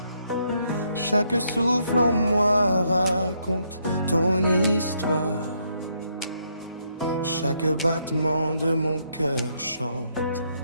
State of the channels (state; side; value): inverted; both; correlation -0.74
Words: Chaque souffle en moi raconte ton histoire. Chaque battement de mon cœur chante